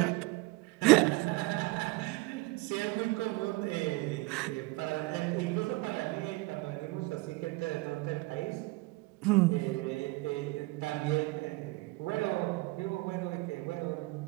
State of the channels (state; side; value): quieter; left; 22.9 dB